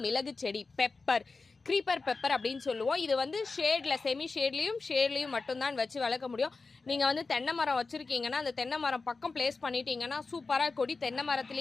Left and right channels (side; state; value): right; quieter; 4.1 dB